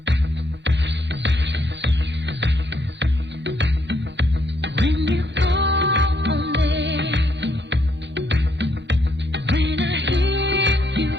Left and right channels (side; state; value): both; normal; correlation 0.73